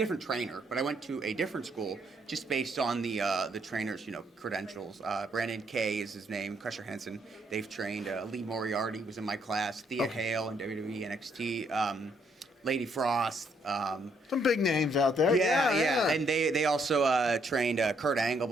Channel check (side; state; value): both; normal; correlation 0.71